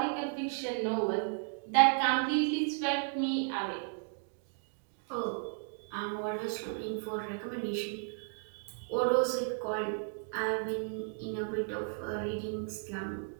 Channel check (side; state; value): left; silent; 55 dB below the other